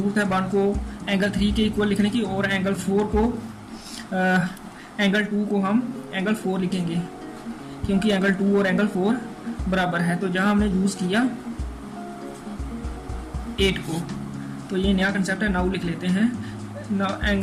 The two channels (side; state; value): both; identical; correlation 1.00